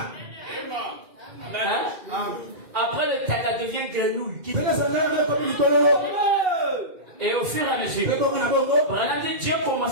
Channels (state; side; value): late; left; 2.3 ms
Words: Après le téta devient grenouille. Et au fur et à mesure, Dieu a